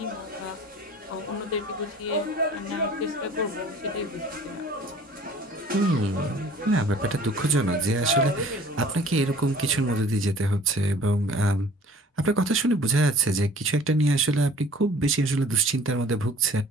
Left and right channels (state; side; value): normal; both; correlation 0.49